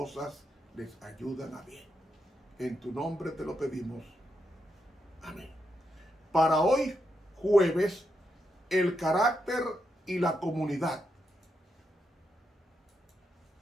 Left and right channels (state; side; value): normal; both; correlation 0.83